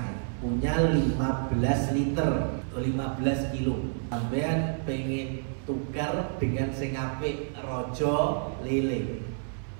ya, punya 15 liter atau 15 kilo. Sampean pengen tukar dengan sing apik rojo lele,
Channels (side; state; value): left; silent; 59 dB below the other